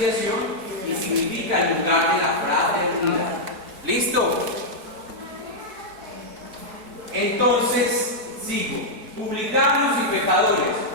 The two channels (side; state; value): left; late; 4.6 ms